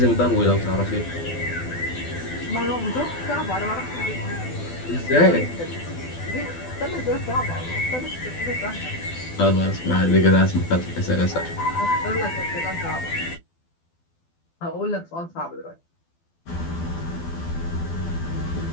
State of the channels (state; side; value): late; right; 12 ms